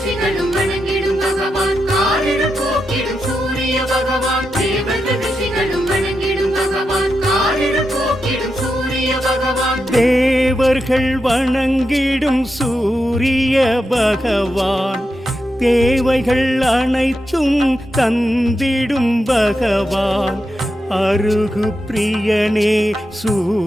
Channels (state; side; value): normal; both; correlation 0.87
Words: தேவர்கள் வணங்கிடும் சூரிய பகவான், தேவைகள் அனைத்தும் தந்திடும் பகவான், அருகு பிரியனே